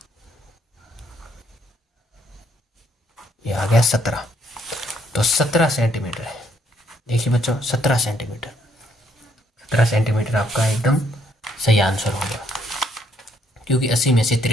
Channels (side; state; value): both; normal; correlation 0.70